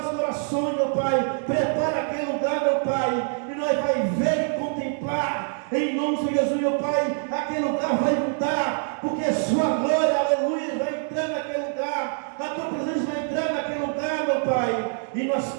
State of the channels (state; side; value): silent; left; 62 dB below the other